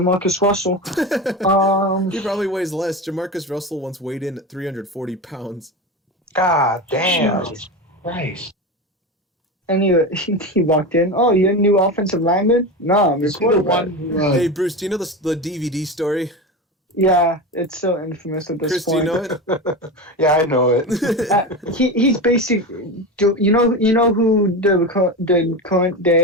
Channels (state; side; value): normal; both; correlation 0.22